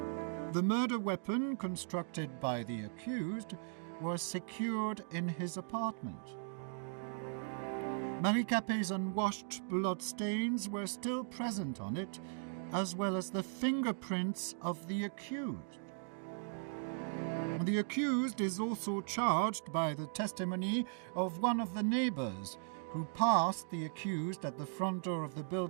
The murder weapon, constructed by the accused, was secured in his apartment. Marie Capet's unwashed blood stains were still present on it, as well as the fingerprints of the accused. The accused is also charged by the testimony of one of the neighbors who passed the accused at the front door of the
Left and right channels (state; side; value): silent; left; digital silence